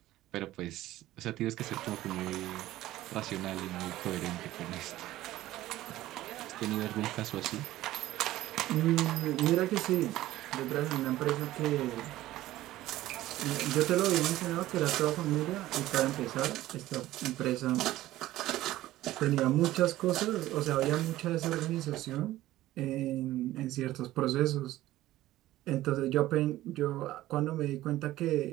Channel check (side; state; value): left; quieter; 15.5 dB